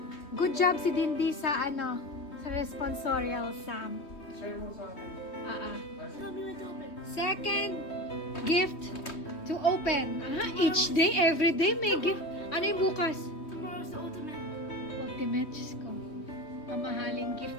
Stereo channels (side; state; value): right; late; 3.2 ms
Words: good job si Dindy sa sa responsorial, Sam. Share mo sa akin. Second gift to open. Each day, every day may gift. Ano yung bukas? Tomorrow's the ultimate. Ultimate, Diyos ko. Mamahaling